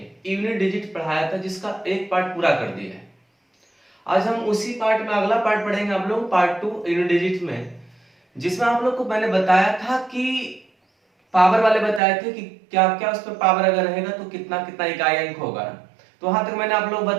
यूनिट डिजिट पढ़ाया था, जिसका एक पार्ट पूरा कर दिया है। आज हम उसी पार्ट में अगला पार्ट पढ़ेंगे आप लोग, पार्ट 2 यूनिट डिजिट में, जिसमें आप लोग को मैंने बताया था कि पावर वाले बताए थे कि क्या क्या उस पर पावर अगर रहेगा तो कितना कितना इकाई अंक होगा। तो वहां तक मैंने आप लोग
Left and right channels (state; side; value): drops out; left; at 12.0 s